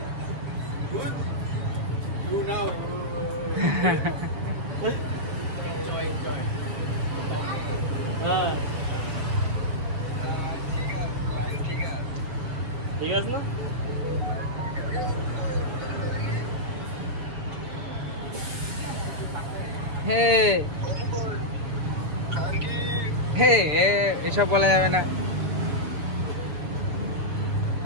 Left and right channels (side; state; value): left; late; 6.7 ms